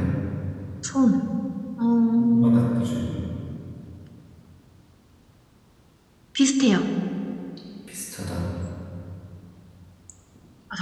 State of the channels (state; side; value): identical; both; correlation 1.00